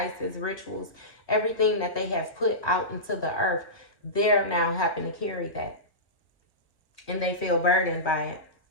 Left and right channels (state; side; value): late; right; 1.3 ms